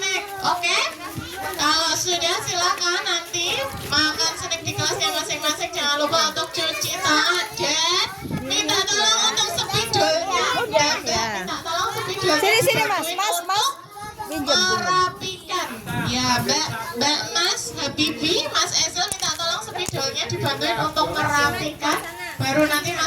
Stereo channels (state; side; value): identical; both; correlation 1.00